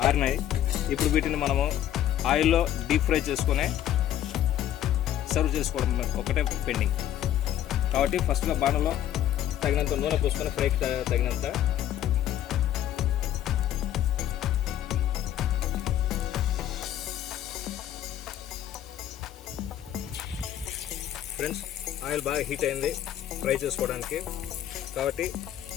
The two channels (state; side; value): quieter; right; 11.6 dB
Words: ఆరినాయి. ఇప్పుడు వీటిని మనము ఆయిల్లో డీప్ ఫ్రై చేసుకొని సర్వ్ చేసుకోవడం ఒకటే పెండింగ్. కాబట్టి ఫస్ట్గా బాణలో తగినంత నూనె పోసుకొని ఫ్రైకి తగినంత ఫ్రెండ్స్, ఆయిల్ బాగా హీట్ అయింది ఫ్రై చేసుకోవడానికి. కాబట్టి